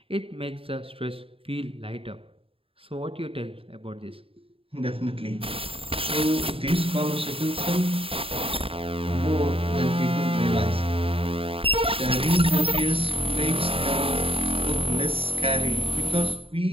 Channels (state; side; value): late; left; 0.27 ms